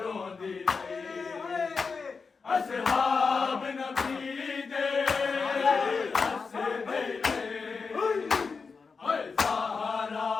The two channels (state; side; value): quieter; right; 4.9 dB